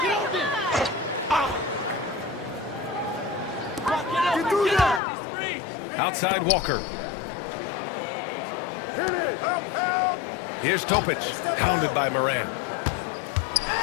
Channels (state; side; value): drops out; right; at 5.0 s